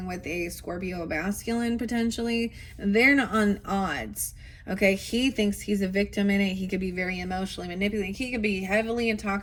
with a Scorpio masculine potentially, they're not on odds. Okay, he thinks he's a victim in it. He could be very emotionally manipulating. He could be heavily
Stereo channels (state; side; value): identical; both; correlation 1.00